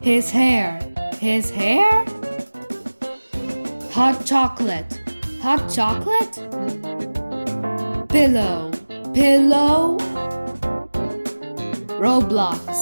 His hair, his hair. Hot chocolate, hot chocolate. Pillow, pillow.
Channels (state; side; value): inverted; both; correlation -1.00